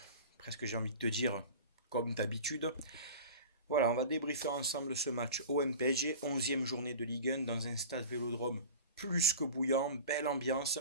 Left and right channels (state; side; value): inverted; both; correlation -0.37